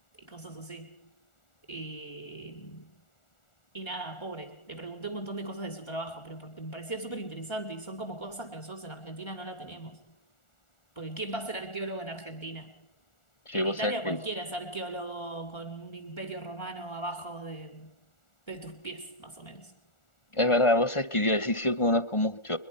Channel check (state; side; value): late; right; 1.4 ms